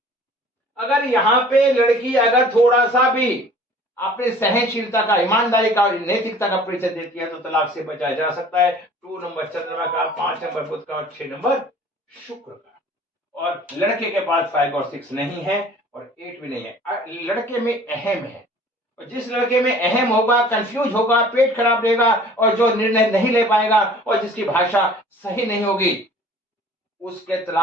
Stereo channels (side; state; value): both; normal; correlation 0.49